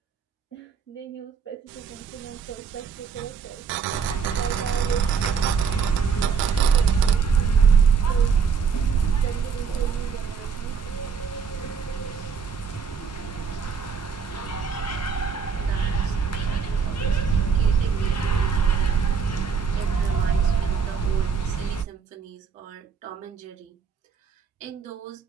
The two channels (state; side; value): quieter; left; 6.2 dB